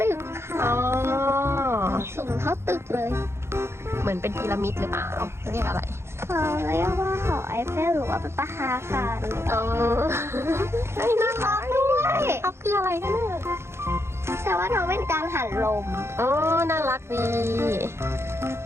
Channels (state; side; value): late; left; 0.12 ms